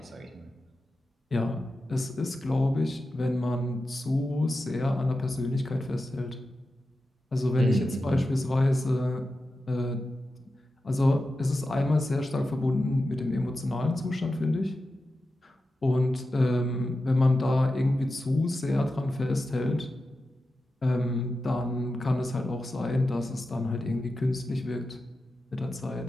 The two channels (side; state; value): both; normal; correlation 0.91